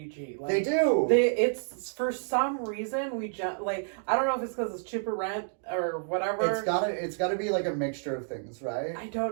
Like, They do. It's for some reason like, I don't know if it's because it's cheaper rent or whatever. It's gotta be like a mixture of things, right? I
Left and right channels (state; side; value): silent; left; digital silence